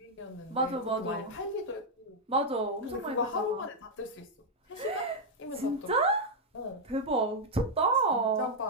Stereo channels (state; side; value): normal; both; correlation -0.02